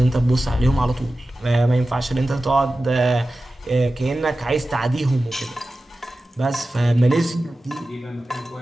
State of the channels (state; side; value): normal; both; correlation 0.94